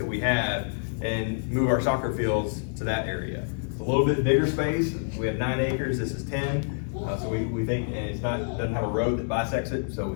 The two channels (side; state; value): right; silent; 60 dB below the other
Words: we have and move our soccer fields to that area. It's a little bit bigger space. We have 9 acres, this is 10. So we think, and doesn't have a road that bisects it, so